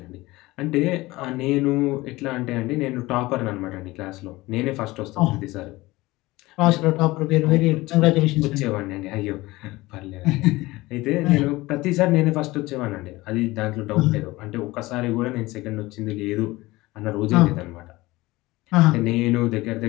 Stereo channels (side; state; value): right; quieter; 20.0 dB